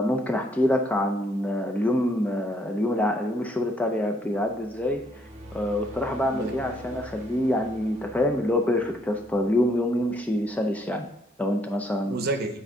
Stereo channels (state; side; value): normal; both; correlation 0.69